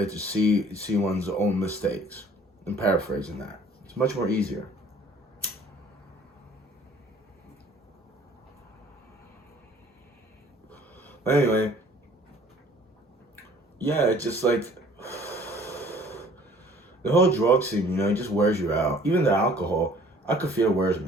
to see one's own mistakes. I'm paraphrasing that. It's much more easier. But anyway, yeah, it's just like, the whole drug scene, you know, it just wears you out. Even the alcohol, I could feel it wears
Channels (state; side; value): normal; both; correlation 0.53